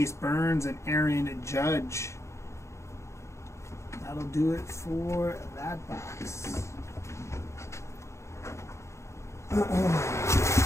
Burns and Aaron Judge. That'll do it for that box.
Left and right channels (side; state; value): right; late; 0.14 ms